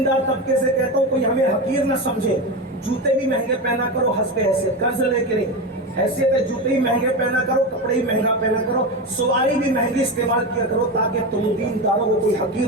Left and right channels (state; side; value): normal; both; correlation 0.19